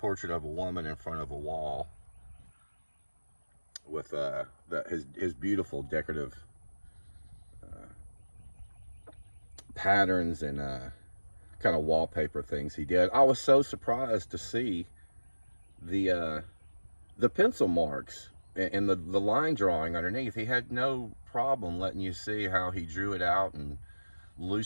of a woman in front of a wall with his beautiful decorative patterns and kind of wallpaper things he did. I was so surprised to see the pencil marks and the line drawing underneath. He had no problem letting you see how he drew it out and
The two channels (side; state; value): both; inverted; correlation -1.00